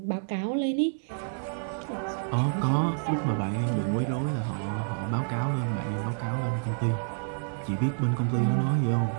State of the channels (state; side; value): silent; left; digital silence